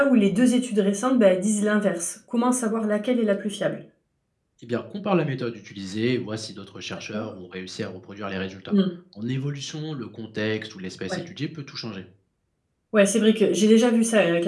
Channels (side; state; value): both; identical; correlation 1.00